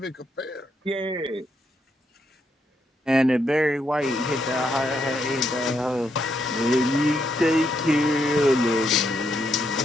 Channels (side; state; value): both; normal; correlation 0.78